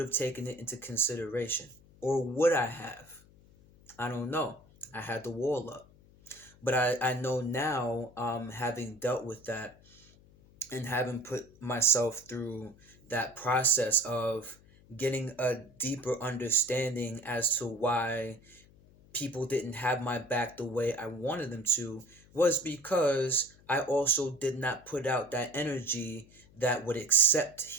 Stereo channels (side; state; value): left; noise; hum, 26 dB below the sound